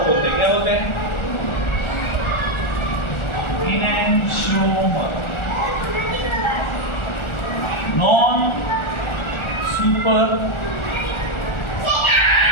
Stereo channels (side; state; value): right; late; 1.4 ms